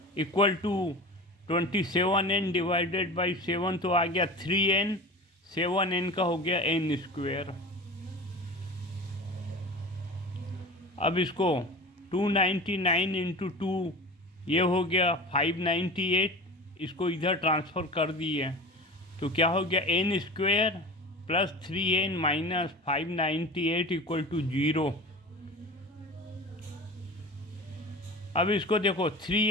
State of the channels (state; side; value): normal; both; correlation 0.34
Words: equal to 27n divided by 7, तो आ गया 3n, 7n का हो गया n स्क्वेयर। अब इसको 299 इंटू 2 ये हो गया 598, इसको इधर ट्रांसफ़र कर दिए, तो क्या हो गया? n square plus 3n minus 598 equal to 0। अब इसको देखो